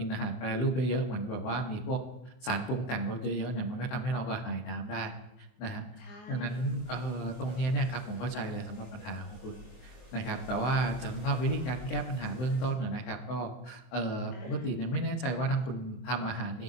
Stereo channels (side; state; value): right; late; 23 ms